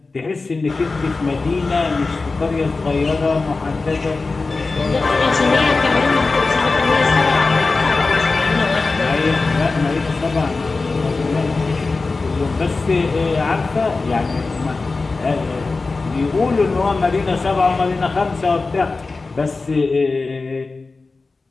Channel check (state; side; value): quieter; right; 3.8 dB